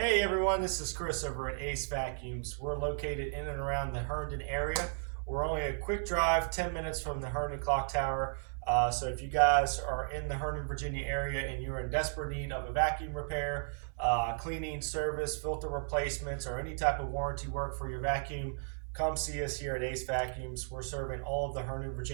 Hey everyone, this is Chris over at AceVacuums. We're located in and around the Herndon area. We're only a quick drive, 10 minutes from the Herndon Clock Tower. So if you guys are in the Herndon, Virginia area and you're in desperate need of a vacuum repair, cleaning service, filter replacements, or any type of warranty work for your vacuum, come see us here at AceVacuums. We're serving all of the Herndon,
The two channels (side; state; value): left; silent; 55 dB below the other